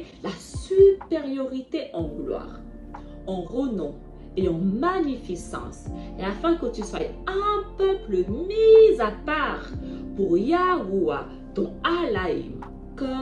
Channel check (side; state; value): both; identical; correlation 1.00